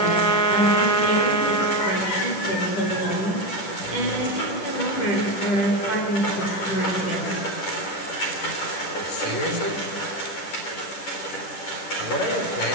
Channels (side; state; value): right; late; 10 ms